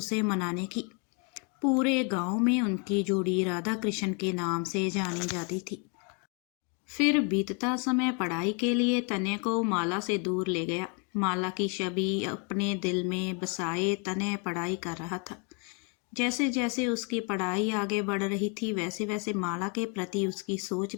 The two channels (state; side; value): quieter; right; 36.3 dB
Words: मनाने की। पूरे गांव में उनकी जोड़ी राधा कृष्ण के नाम से जानी जाती थी। फिर बीतता समय पढ़ाई के लिए तन्या को माला से दूर ले गया। माला की छवि अपने दिल में बसाए तन्या पढ़ाई कर रहा था। जैसे जैसे उसकी पढ़ाई आगे बढ़ रही थी, वैसे वैसे माला के प्रति उसकी सोच